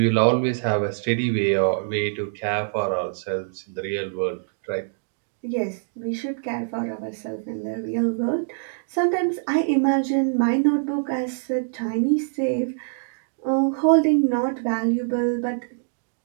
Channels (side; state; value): left; silent; digital silence